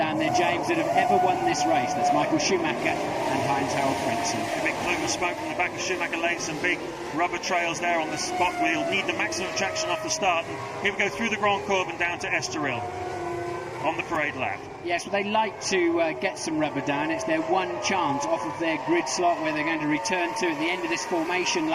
there, James, that have ever won this race. That's Michael Schumacher and Heinz-Harald Frentzen. A big plume of smoke from the back of Schumacher Lane, some big rubber trails there on the spot where you'll need the maximum traction off the start. And here we go through the Grand Cours and down to Estoril on the parade lap. Yes, well, they like to get some rubber down. It's their one chance off of their grid slot where they're going to return to at the end of this formation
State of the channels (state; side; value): identical; both; correlation 1.00